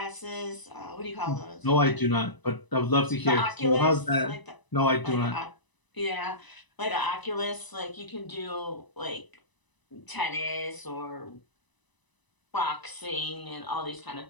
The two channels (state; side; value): late; right; 1.0 ms